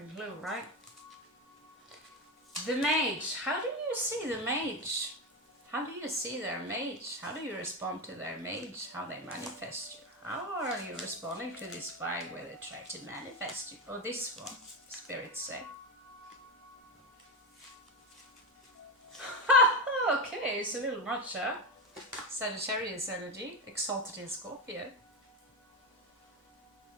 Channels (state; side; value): normal; both; correlation 0.15